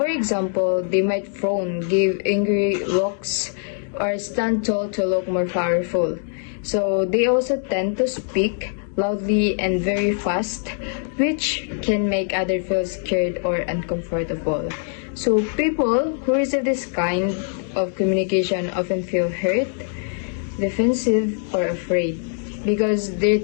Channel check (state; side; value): silent; right; 64 dB below the other